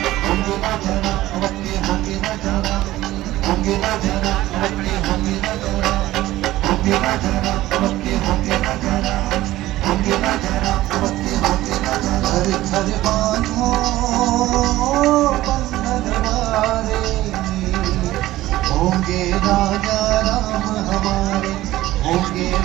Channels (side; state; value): left; quieter; 16.1 dB